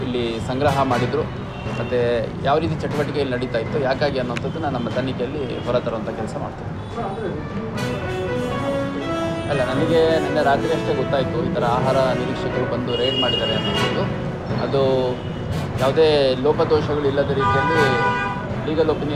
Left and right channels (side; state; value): both; identical; correlation 1.00